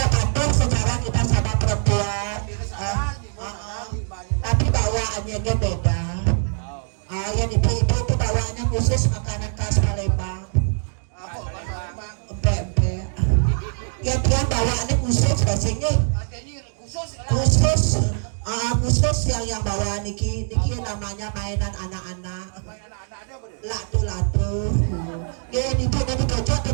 kantor secara kita sama perempuan. Tapi bawaannya dia beda. Yang ibu-ibu itu bawaannya khusus makanan khas Palembang. Empek-empek. Ya dia bawaannya khusus rasanya. Khusus yang bawa niki namanya mainan anak-anak. Latu-latu. Ya ibu dari kocok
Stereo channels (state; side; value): silent; left; 60 dB below the other